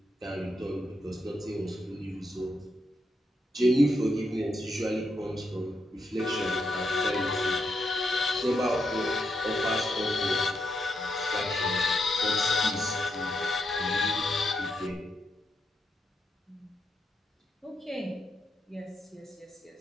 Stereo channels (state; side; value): normal; both; correlation 0.81